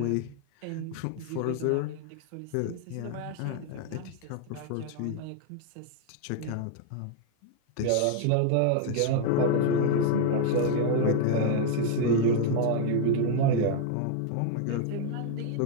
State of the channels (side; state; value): both; different; correlation 0.00